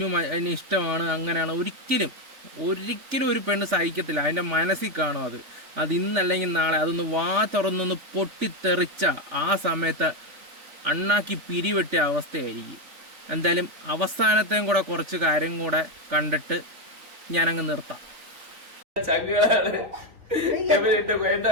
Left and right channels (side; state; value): left; late; 3.5 ms